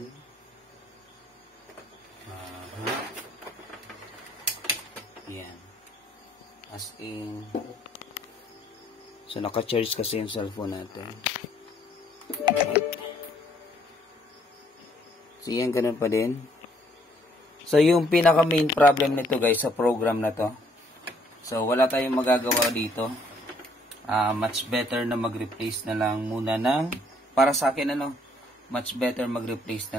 Yan. As in. So, naka-charge kasi yung cellphone natin. So, yan. Ganun pa din. So, yung pinaka-main problem nito guys sa program na to. So, wala tayong magagawa dito. Much better na mag-replace na lang muna ng, para sa akin much better mag-replace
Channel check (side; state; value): both; normal; correlation 0.65